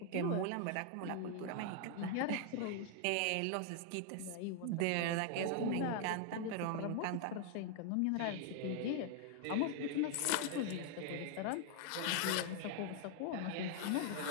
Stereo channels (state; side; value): different; both; correlation 0.00